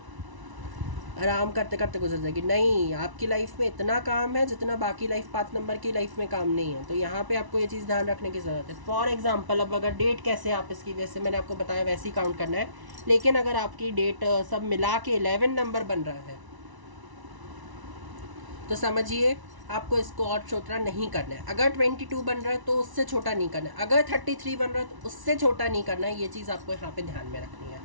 आराम करते करते गुजर जाएगी। नहीं, आपकी लाइफ में इतना काम है जितना बाकी लाइफ पाथ नंबर की लाइफ में काम नहीं है। तो यहाँ पे आपको ये चीज़ ध्यान रखने की ज़रूरत है। फॉर एग्जांपल, अब अगर डेट कैसे आप इसकी, वैसे मैंने आपको बताया वैसे ही काउंट करना है, लेकिन अगर आपकी डेट सब मिला के 11 नंबर बन रहा है तो समझिए आपको इसको और छोटा नहीं करना है। अगर 22 बन रहा है तो उससे छोटा नहीं करना है। अगर 33 बन रहा है तो उससे छोटा नहीं करना है। ये चीज़ आपको यहाँ पे ध्यान में रखनी है।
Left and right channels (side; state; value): left; late; 1.0 ms